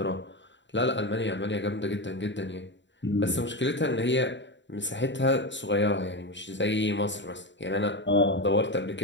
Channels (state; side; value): late; right; 0.53 ms